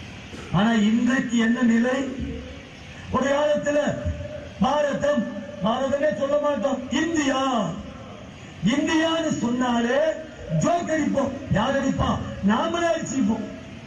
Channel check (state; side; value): identical; both; correlation 1.00